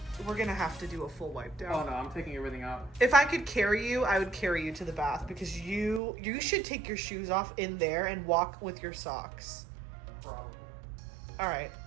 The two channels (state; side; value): drops out; left; at 6.0 s